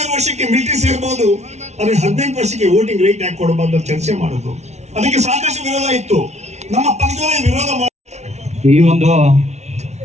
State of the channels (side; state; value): left; late; 0.32 ms